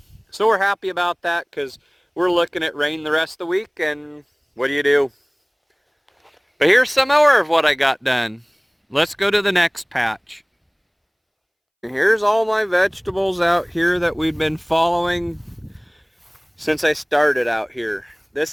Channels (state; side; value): identical; both; correlation 1.00